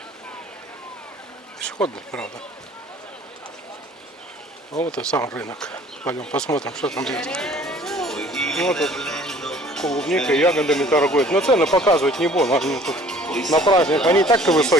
Пешеходный, правда. А вот и сам рынок. Пойдем посмотрим, что там есть. Вот тут клубникой, ягодами торгуют. Но цены показывать не буду. Они тут на праздник, они так-то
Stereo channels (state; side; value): normal; both; correlation 0.52